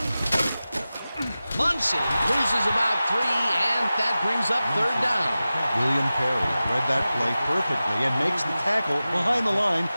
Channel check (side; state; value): both; inverted; correlation -0.95